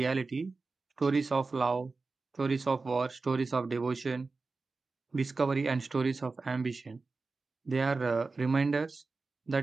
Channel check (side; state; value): left; quieter; 3.9 dB